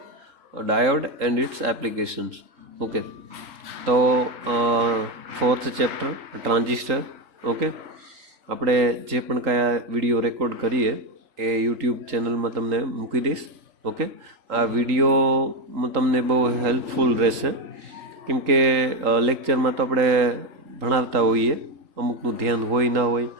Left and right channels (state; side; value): late; left; 3.8 ms